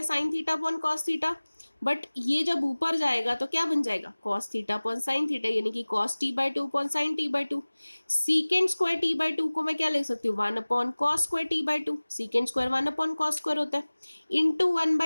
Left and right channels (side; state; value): both; inverted; correlation -1.00